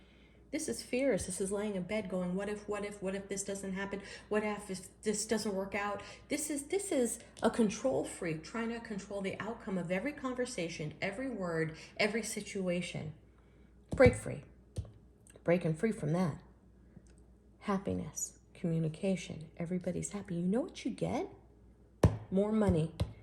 This is fears. This is laying in bed going, what if this doesn't happen? What if this doesn't work out? This is a control freak trying to control the outcome of every conversation, every word, every situation. Break free. Breaking free from that. Happiness, communication, everybody's happy. You know what you get? More money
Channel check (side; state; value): both; identical; correlation 1.00